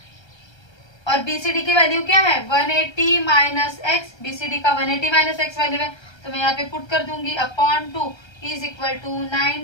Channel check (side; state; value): right; late; 1.3 ms